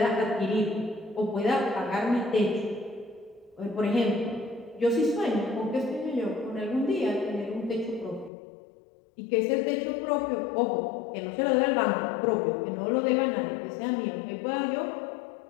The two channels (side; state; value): right; drops out; at 8.3 s